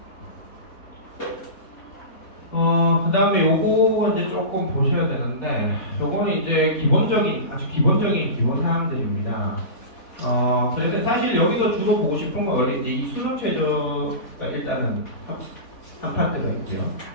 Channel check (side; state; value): right; late; 4.2 ms